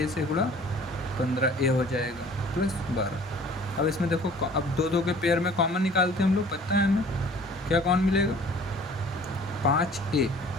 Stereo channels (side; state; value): both; normal; correlation 0.50